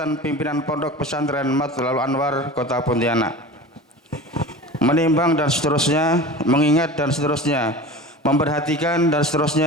pimpinan Pondok Pesantren Matla'ul Anwar Kota Pontianak. Menimbang dan seterusnya, mengingat dan seterusnya, memperhatikan dan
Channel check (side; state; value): both; normal; correlation 0.35